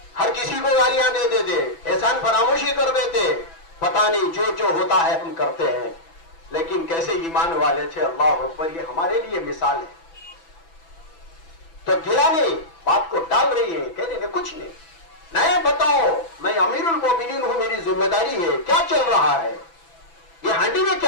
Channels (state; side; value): late; right; 6.0 ms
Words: हर किसी को गालियां दे देते, एहसान फरामोशी कर देते। पता नहीं जो जो होता है हम करते हैं, लेकिन कैसे ईमान वाले थे। अल्लाह अकबर, ये हमारे लिए मिसाल है। तो गिला नहीं, बात को टाल रही है, कह रही कुछ नहीं, नहीं बताओ, मैं अमीरुल मोमिनीन हूं, मेरी जिम्मेदारी है, क्या चल रहा है, ये हांडी में